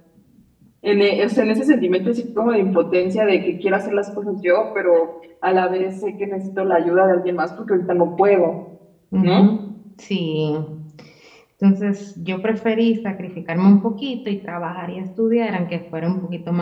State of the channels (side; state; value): both; identical; correlation 1.00